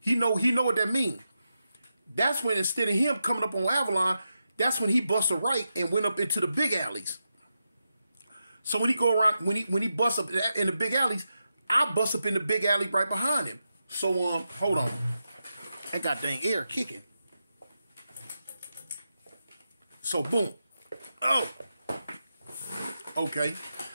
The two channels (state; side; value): inverted; both; correlation -0.88